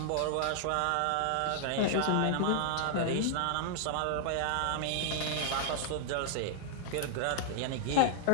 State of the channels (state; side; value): different; both; correlation -0.01